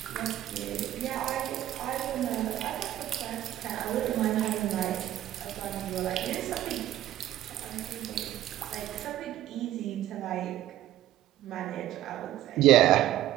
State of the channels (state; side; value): quieter; left; 13.4 dB